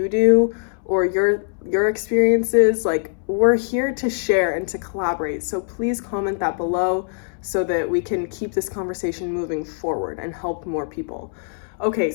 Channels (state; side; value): silent; right; 64 dB below the other